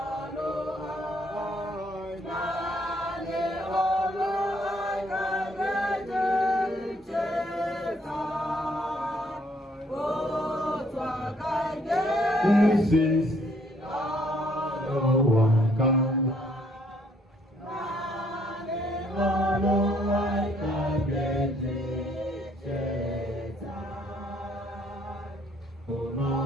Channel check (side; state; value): both; normal; correlation 0.66